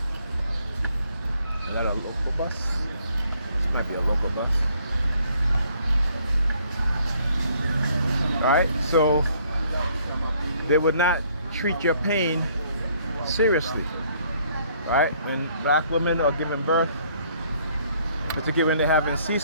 that a local bus? This might be a local bus. All right, so they would not treat your pain seriously, right? When black women are giving birth, particularly when they're having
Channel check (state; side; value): inverted; both; correlation -0.64